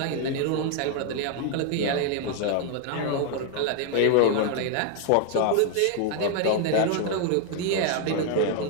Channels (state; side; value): different; both; correlation 0.00